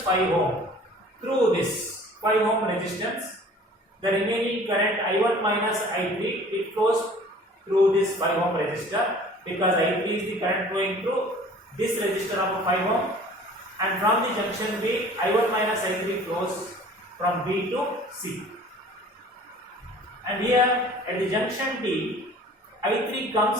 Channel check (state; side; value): normal; both; correlation 0.48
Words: 5 ohm. Through this 5 ohm resistance, the remaining current I1 minus I3, it flows through this 5 ohm resistor, because I3 is the current flowing through this resistor of 5 ohm, and from the junction B, I1 minus I3 flows from B to C. And here at the junction D, I3